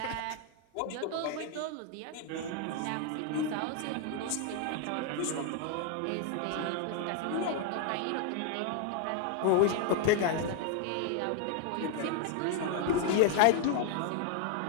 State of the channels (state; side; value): different; both; correlation 0.00